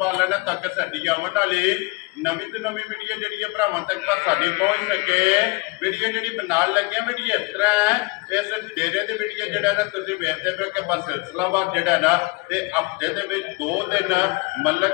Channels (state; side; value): quieter; right; 26.2 dB